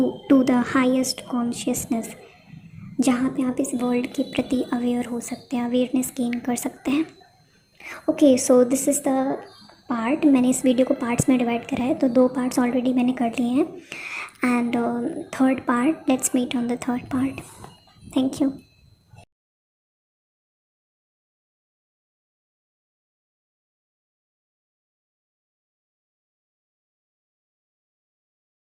the highest consciousness, जहाँ पे आप इस वर्ल्ड के प्रति अवेयर हो सकते हैं, अवेयरनेस गेन कर सकते हैं। Okay, so this is the part. मैंने इस वीडियो को पार्ट्स में डिवाइड करा है, तो 2 पार्ट्स ऑलरेडी मैंने कर लिए हैं, and third part, let's meet on the third part. Thank you.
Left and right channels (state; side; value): identical; both; correlation 1.00